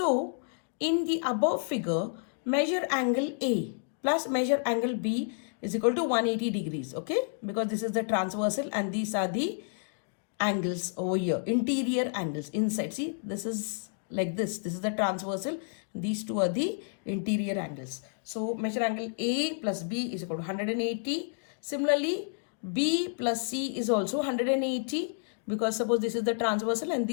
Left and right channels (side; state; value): right; silent; digital silence